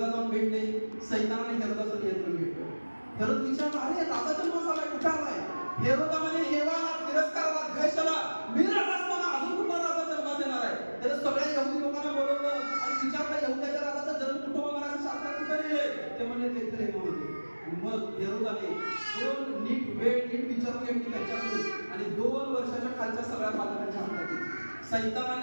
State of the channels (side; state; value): both; inverted; correlation -1.00